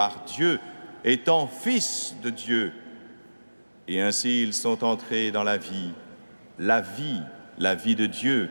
Dieu, étant fils de Dieu. Et ainsi, ils sont entrés dans la vie de Dieu,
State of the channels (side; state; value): both; inverted; correlation -1.00